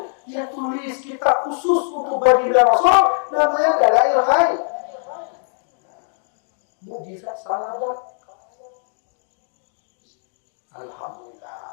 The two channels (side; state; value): right; silent; digital silence